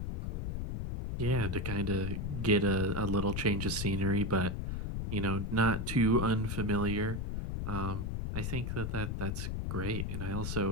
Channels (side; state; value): left; noise; rumble, 2 dB below the sound